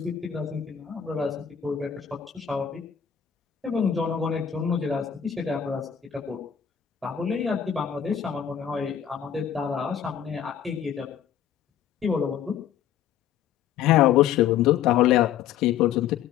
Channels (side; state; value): right; quieter; 9.3 dB